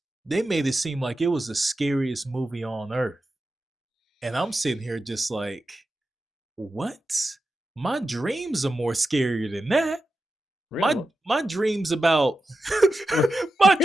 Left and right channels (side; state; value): both; normal; correlation 0.91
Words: They made it seem like it was the scariest movie on earth. And I'm sitting here just like, what? My dreams are more scarier than that. Really? My dreams about my